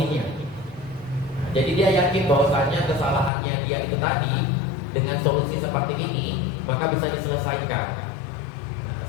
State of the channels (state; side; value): drops out; right; at 3.3 s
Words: Jadi dia yakin bahwasanya kesalahannya dia itu tadi dengan solusi seperti ini maka bisa diselesaikan.